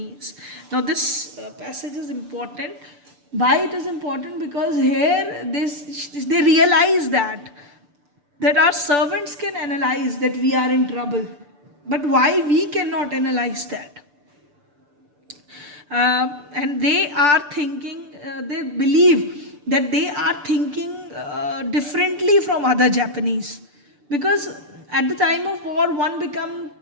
Now this passage is important Why it is important? Because here they realize that our servants can analyze that we are in trouble, but why we cannot analyze that? And they are thinking, they believe that they are thinking differently from other Japanese, because at the time of war one become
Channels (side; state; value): left; late; 6.8 ms